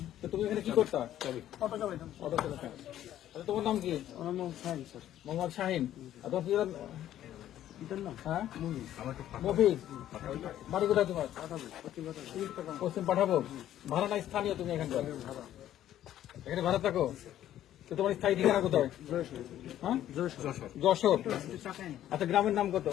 তো তুমি এখানে কি করতা? অটো চালাইতাম। অটো চালাতা। আচ্ছা, তোমার নাম কি? আমার নাম শাহিন স্যার। মোহাম্মদ শাহিন। আর তোমার পিতার নাম? হ্যাঁ, মফিজ। বাড়ি কোথায় তোমার? পশ্চিম পাঠাবো। ভাড়া নাই, স্থানীয় তুমি এখানকার? এখানে ভাড়া থাকো। তো তোমার স্থায়ী ঠিকানা কোথায়? হ্যাঁ, যশোর। আচ্ছা, গ্রামের নাম কত?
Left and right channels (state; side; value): quieter; right; 12.1 dB